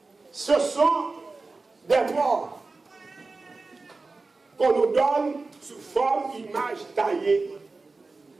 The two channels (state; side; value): quieter; left; 3.7 dB